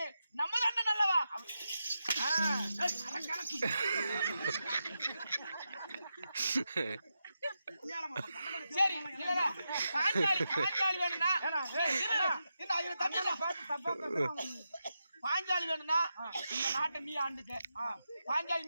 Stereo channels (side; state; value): both; inverted; correlation -0.88